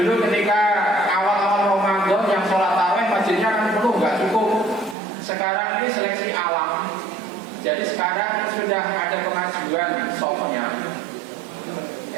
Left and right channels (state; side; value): drops out; left; at 5.0 s